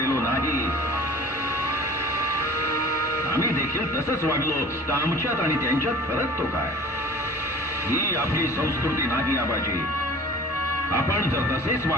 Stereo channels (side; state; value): both; normal; correlation 0.43